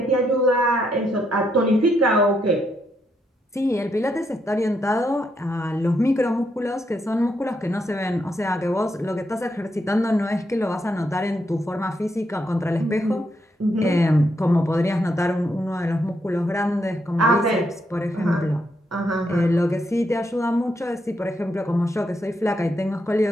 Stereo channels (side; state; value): both; normal; correlation 0.79